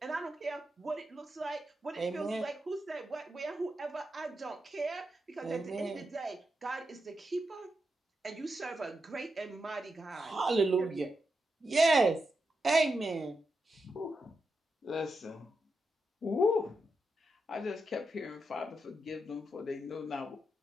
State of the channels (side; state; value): both; normal; correlation 0.86